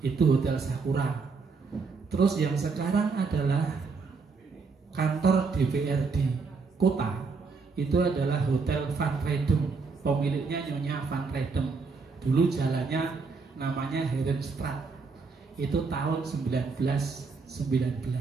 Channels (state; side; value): quieter; left; 4.6 dB